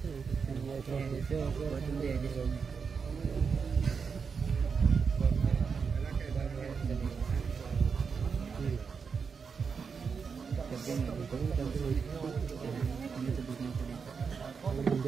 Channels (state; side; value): quieter; left; 5.7 dB